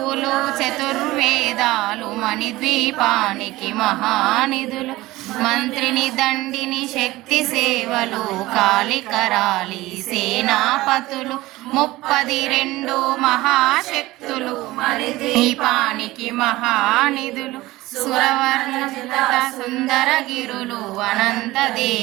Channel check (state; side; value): quieter; left; 18.5 dB